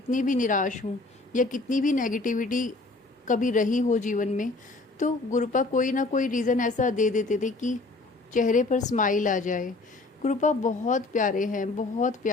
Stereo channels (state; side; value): quieter; right; 3.3 dB